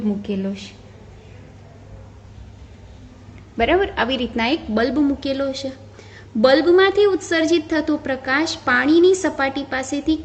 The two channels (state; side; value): identical; both; correlation 1.00